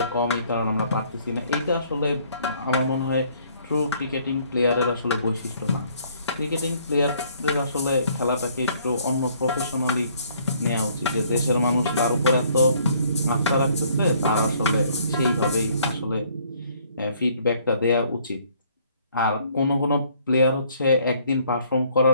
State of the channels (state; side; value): inverted; both; correlation -0.62